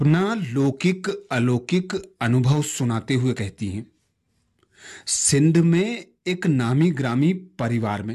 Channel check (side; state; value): both; identical; correlation 1.00